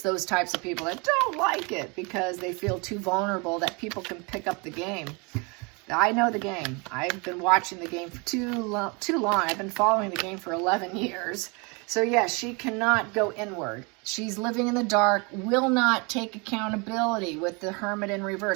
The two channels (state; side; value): quieter; left; 30.3 dB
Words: those types of people that don't like it because they feel too vulnerable that people can pick up the game. I know the game. I've been watching the game for too long. I've been following the game for 11 years. So yes, she cannot go inward. She's living in the dark, will not take accountability with the Hermit in